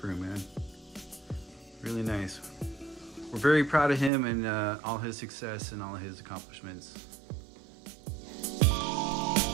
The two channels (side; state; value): left; drops out; at 4.1 s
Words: man. Really nice. We're very proud of him and all his success and all his accomplishments.